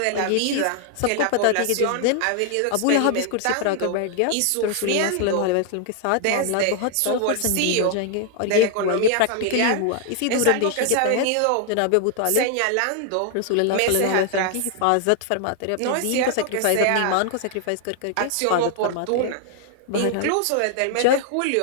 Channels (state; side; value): different; both; correlation 0.00